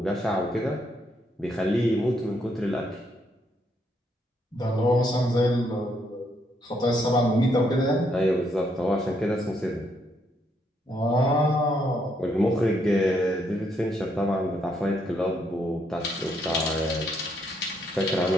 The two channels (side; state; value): both; normal; correlation 0.74